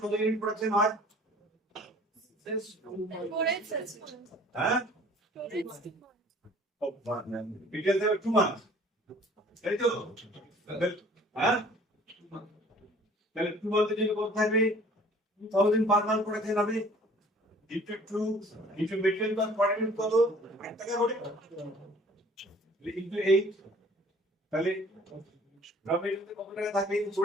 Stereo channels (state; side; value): normal; both; correlation 0.51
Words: কত ইউনিট প্রোডাকশন হয়? হ্যাঁ, মেটেরিয়াল দেবে 2 মান্থ, তাই তো? হ্যাঁ, তাহলে 2 মান্থের জন্য কত থাকবে? 2,000 পার মান্থ প্রোডাকশন হবে, into 2 into material cost per unit কত? 8 টাকা করে, into 8, তাহলে র মেটেরিয়াল কত টাকা থাকবে?